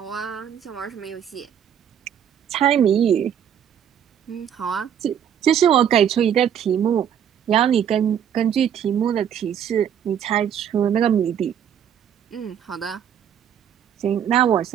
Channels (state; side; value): quieter; left; 9.0 dB